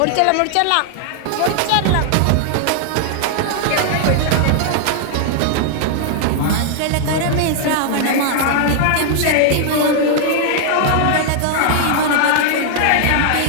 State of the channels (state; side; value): different; both; correlation -0.01